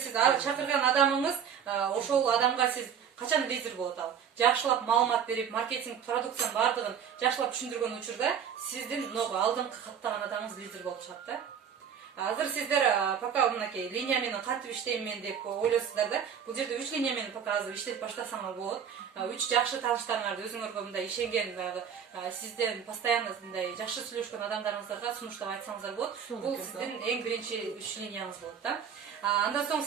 сиз чакырган адамыңыз, ошол адамга сиз качан лидер болот ал. Жакшылап маалымат берип, маркетинг продукциянын бардыгын жакшылап түшүндүргөн учурда сиздин алдыңкы каттаган адамыңыз лидер болуп чыгат да. Азыр сиздер пока мынакей линия менен кантип иштейм мен деп ойлойсуздар да. Бул жерде 3 линия менен пока азыр иштеп баштасаңар болот. 3 жакшы тааныштарыңарды өзүңөргө мындай ишенген сизден постоянно мындай жакшы сүйлөшкөн адамдарыңыздарга сунуштап айтсаңыздар болот. Бул сиздин эң биринчи 3 линияңыз болот да. Андан соң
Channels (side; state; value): left; quieter; 7.9 dB